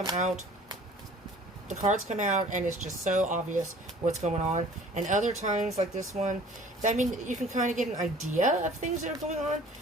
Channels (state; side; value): normal; both; correlation 0.50